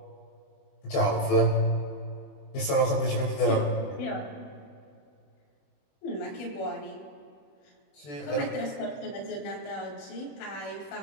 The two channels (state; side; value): late; right; 21 ms